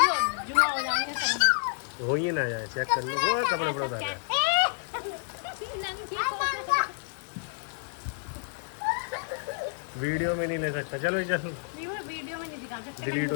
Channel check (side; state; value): right; silent; 58 dB below the other